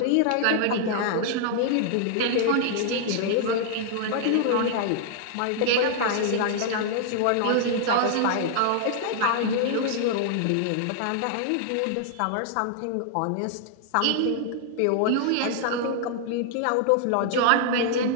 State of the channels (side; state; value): both; different; correlation -0.01